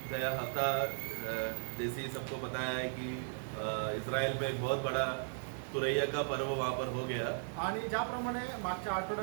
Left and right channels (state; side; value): silent; left; digital silence